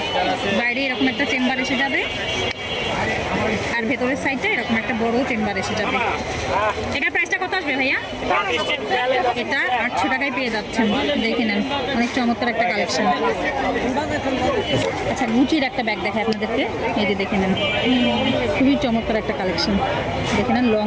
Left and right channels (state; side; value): identical; both; correlation 1.00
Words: বাইরে এরকম একটা চেম্বার এসে যাবে আর ভেতরের সাইডটা এরকম একটা বড় চেম্বার এসে যাবে। এটার প্রাইসটা কত আসবে ভাইয়া? এটা 800 টাকায় পেয়ে যাচ্ছেন, দেখে নেন অনেক চমৎকার একটা কালেকশন। আচ্ছা গুচির একটা ব্যাগ দেখায় আপনাদেরকে, এই যে দেখে নেন খুবই চমৎকার একটা কালেকশন, দেখে নেন লং